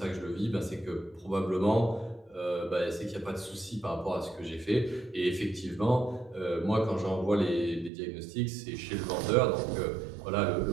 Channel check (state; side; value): drops out; left; at 7.9 s